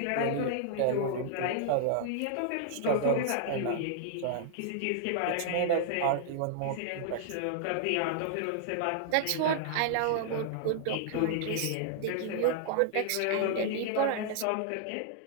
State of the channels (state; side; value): different; both; correlation -0.01